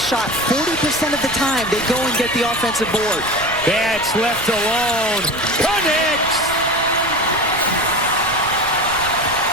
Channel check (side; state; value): right; noise; rumble, 15 dB below the sound